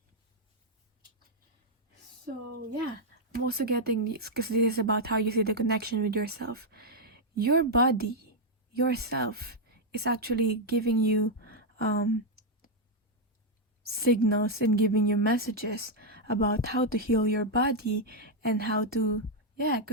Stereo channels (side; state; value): both; normal; correlation -0.01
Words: So yeah, I'm also getting this because this is about how you see the connection with yourself. Your body, yourself, is actually giving you signals and giving you messages about how to heal your body and how to, yeah,